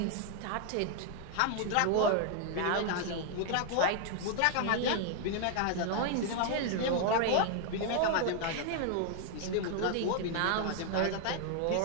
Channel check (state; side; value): different; both; correlation 0.00